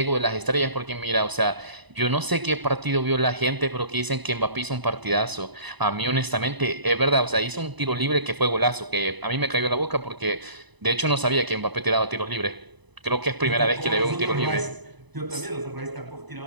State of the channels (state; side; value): late; left; 1.0 ms